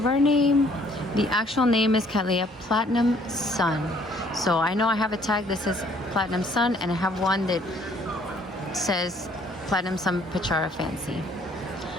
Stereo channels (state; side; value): normal; both; correlation 0.61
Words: name. The actual name is Cattleya Platinum Sun. So I know I have a tag that says Platinum Sun, and I have one that says Platinum Sun Pachara Fancy.